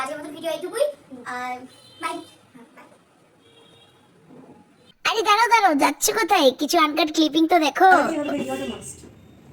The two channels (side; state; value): both; identical; correlation 1.00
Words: আজকের মতো ভিডিও এইটুকুই। আর বাই। আরে দাঁড়াও দাঁড়াও, যাচ্ছে কোথায়? কিছু আনকাট ক্লিপিং তো দেখো।